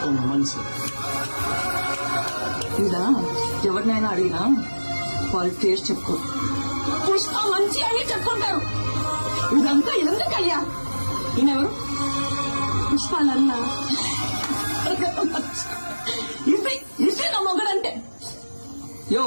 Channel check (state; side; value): inverted; both; correlation -1.00